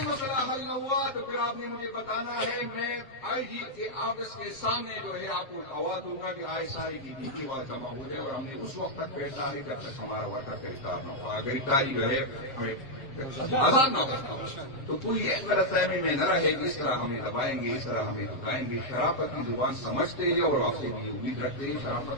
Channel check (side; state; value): right; late; 7.5 ms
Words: مسئلہ حل نہ ہوا تو پھر آپ نے مجھے بتانا ہے. میں آئی جی کے آفس کے سامنے جو ہے آپ کو آواز دوں گا کہ آئی ساری کی ڈیٹی وہاں جمع ہو جائے، اور ہم نے اس وقت تک بیٹھنا ہے جب تک ہمارا ورکر گرفتار نہ ہوا. گرفتاری جو ہے ہمیں آزاد نہ ہو تو کوئی یہ غلط فہمی میں نہ رہے کہ اس طرح ہمیں دبائیں گے، اس طرح ہمیں دکھائیں گے. شرافت کی زبان سمجھتے ہیں اور آپ سے بھی امید رکھتے ہیں